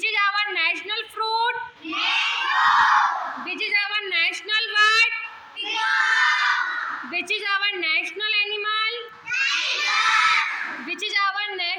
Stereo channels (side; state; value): both; identical; correlation 1.00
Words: is our national fruit? Which is our national bird? Which is our national animal? Which is our